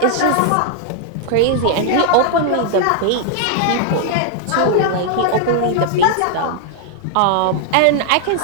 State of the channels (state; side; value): different; both; correlation 0.00